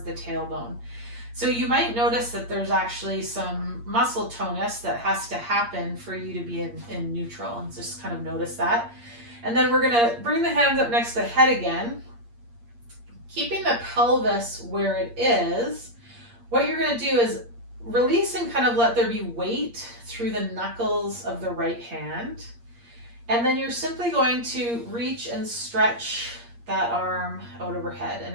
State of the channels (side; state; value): left; late; 8.6 ms